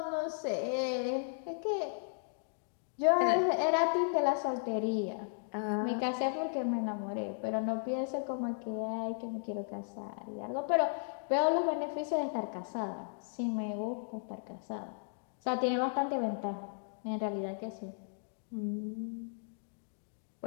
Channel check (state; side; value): silent; right; digital silence